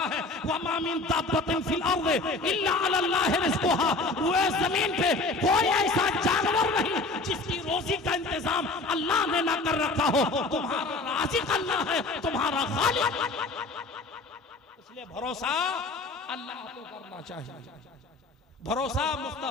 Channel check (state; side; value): quieter; right; 3.3 dB